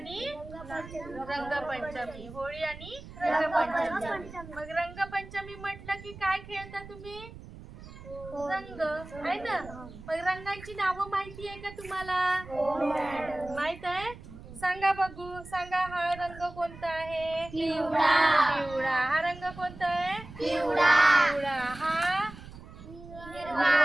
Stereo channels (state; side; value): noise; right; rumble, 16 dB below the sound